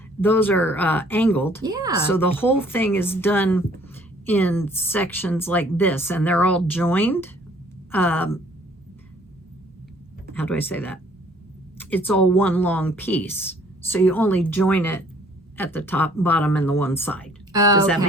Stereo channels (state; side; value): normal; both; correlation 0.58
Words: those are angled. Yeah. So the whole thing is done in sections like this, and they're all joined. How do I say that? It's all one long piece, so you only join it at the top, bottom, and the one side. Oh, Does that okay,